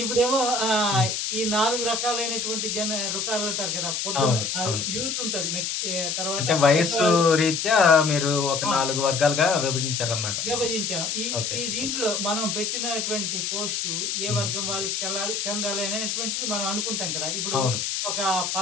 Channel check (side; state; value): left; noise; hiss, 1 dB below the sound